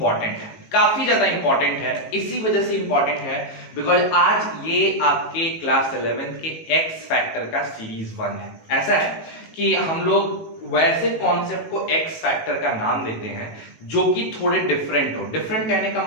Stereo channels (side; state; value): right; late; 18 ms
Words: है, काफी ज्यादा इंपॉर्टेंट है। इसी वजह से इंपॉर्टेंट है बिकॉज आज ये आपके क्लास 11th के एक्स फैक्टर का सीरीज 1 है। ऐसा है कि हम लोग वैसे कॉन्सेप्ट को एक्स फैक्टर का नाम देते हैं जो कि थोड़े डिफरेंट हो। डिफरेंट कहने का